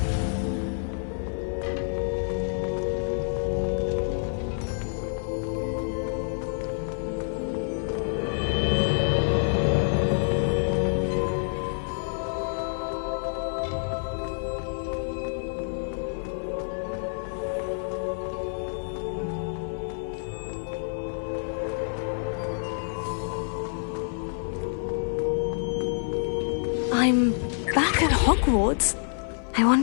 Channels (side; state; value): right; silent; 60 dB below the other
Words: I'm back at Hogwarts. I